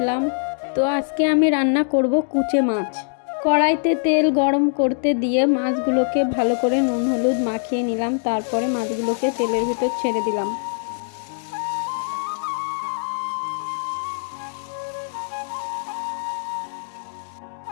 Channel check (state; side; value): silent; right; digital silence